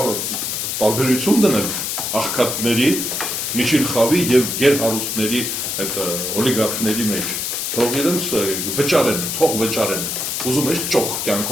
տարբերություն դնել աղքատների, միջին խավի եւ գերհարուստների այդ օլիգարխների մեջ։ Թող իրենց վճարեն, թող վճարեն։ Ուզում ես ճոխ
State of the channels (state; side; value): noise; left; hiss, 2 dB below the sound